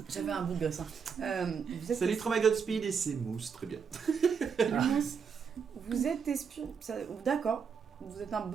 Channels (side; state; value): left; quieter; 6.3 dB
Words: J'avais un bout de gosse. Vous êtes Salut Trauma Godspeed et c'est Mousse, très bien. Vous êtes espion. D'accord. Vous êtes un